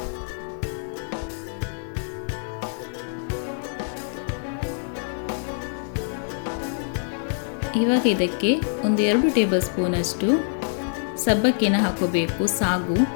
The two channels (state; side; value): silent; right; digital silence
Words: ಇವಾಗ ಇದಕ್ಕೆ 2 ಟೇಬಲ್ ಸ್ಪೂನಷ್ಟು ಸಬ್ಬಕ್ಕಿನ ಹಾಕೋಬೇಕು, ಸಾಗು.